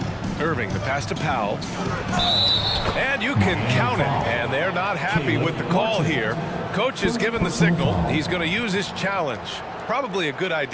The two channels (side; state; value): both; identical; correlation 1.00